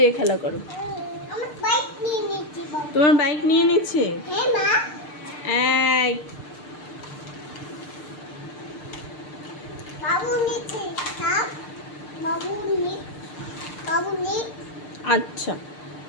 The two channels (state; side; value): late; right; 6.7 ms